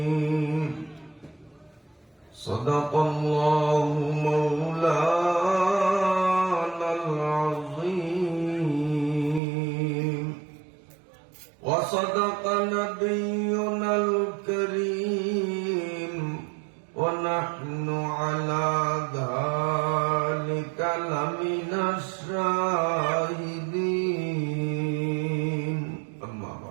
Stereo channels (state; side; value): drops out; left; at 9.4 s